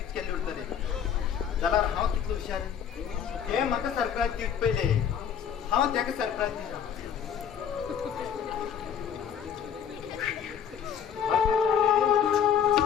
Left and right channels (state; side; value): quieter; right; 8.4 dB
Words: केल्ली उरतली जाल्यार हांव कितलो हुशार हे म्हाका सरप्राईज दीत पयले हांव त्याका सरप्राईज दिता